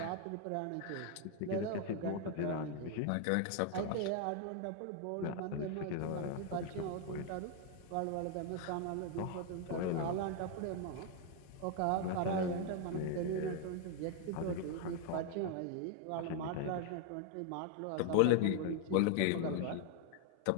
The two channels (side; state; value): both; different; correlation 0.00